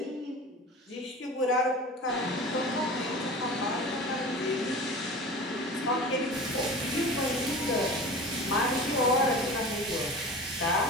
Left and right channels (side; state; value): both; normal; correlation 0.36